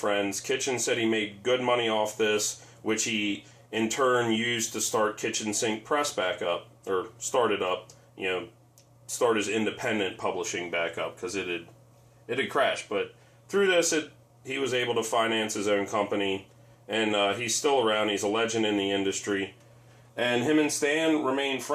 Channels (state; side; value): identical; both; correlation 1.00